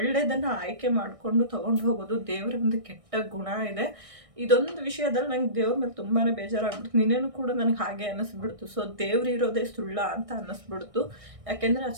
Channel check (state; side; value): late; left; 1.6 ms